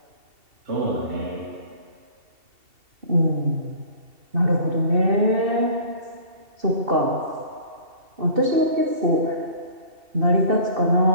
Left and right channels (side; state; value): left; late; 2.7 ms